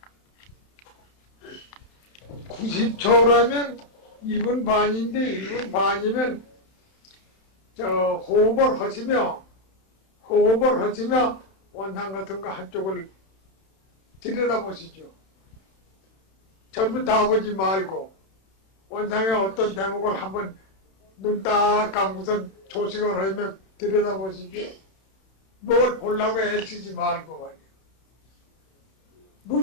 90초라면 1분 반인데 1분 반이면 호흡을 하시며 원상 같은 거 한쪽을 들여다보시죠. 전부 다 보지 말고 원상의 어떤 대목을 한번 눈 딱 감고선 조식을 하며 들여다보시죠. 뭘 보려고 애쓰지 말고 말이야.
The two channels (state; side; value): late; right; 31 ms